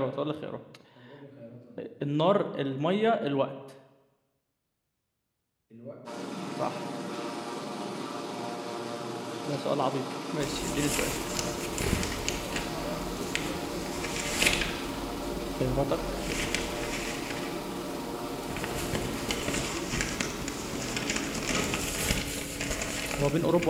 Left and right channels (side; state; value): both; identical; correlation 1.00